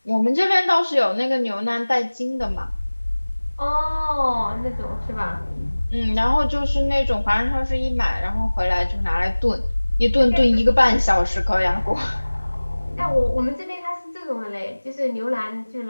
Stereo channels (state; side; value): inverted; both; correlation -1.00